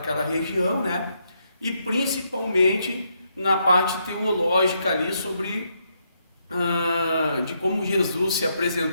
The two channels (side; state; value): both; inverted; correlation -0.78